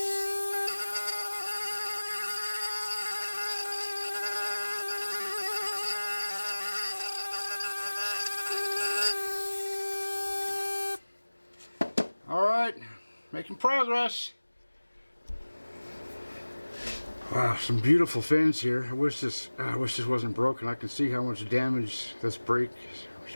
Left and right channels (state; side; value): inverted; both; correlation -1.00